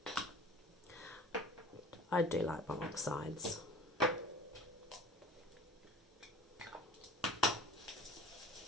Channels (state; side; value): normal; both; correlation 0.44